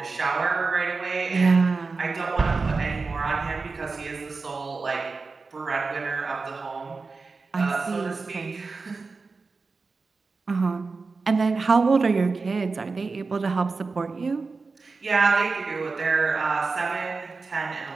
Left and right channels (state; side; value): quieter; left; 4.2 dB